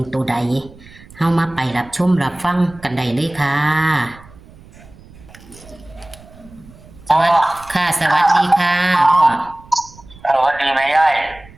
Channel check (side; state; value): right; noise; rumble, 22 dB below the sound